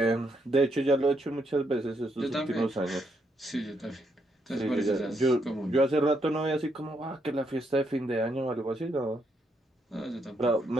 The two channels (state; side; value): normal; both; correlation 0.77